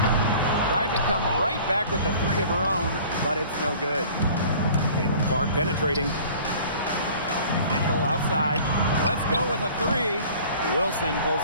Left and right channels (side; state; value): both; inverted; correlation -0.47